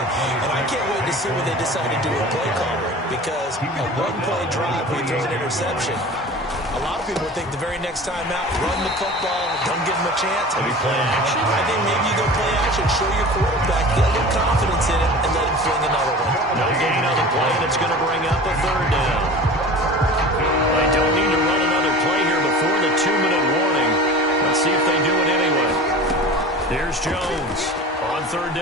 And I can't wait to see what they decide to do with play calling, because a one-play drive where you throw an interception, a lot of people think the very next time out, run the football, don't give them a chance. Maybe play action. I think maybe you go play action, show your quarterback, get a little confidence in it, and let him fling another one. No gain on the play, and it's going to bring up a 3rd down. They don't need to run another play here before the 2-minute warning. Let's see if they do it anyway. Here's Jones on 3rd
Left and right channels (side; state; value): both; normal; correlation 0.38